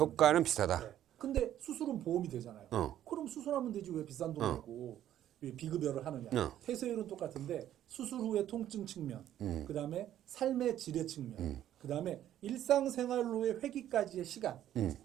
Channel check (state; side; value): quieter; left; 11.7 dB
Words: 비슷하다. 근데 수술은 보험이 되잖아요. 그럼 수술하면 되지 왜 비싼 돈 내고 비급여를 하느냐. 폐쇄율은 똑같은데 수술 후의 통증 측면, 그 다음에 삶의 질의 측면, 그 다음에 일상생활로의 회귀까지의 시간.